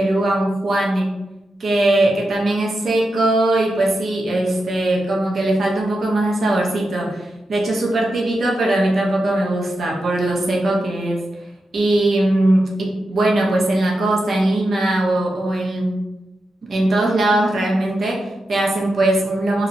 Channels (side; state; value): both; normal; correlation 0.88